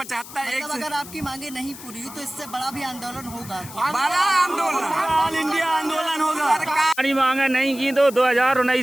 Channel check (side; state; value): left; noise; hiss, 15 dB below the sound